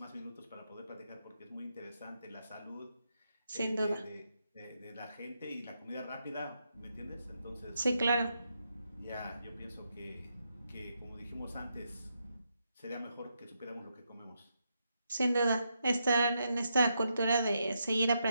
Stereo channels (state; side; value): inverted; both; correlation -0.82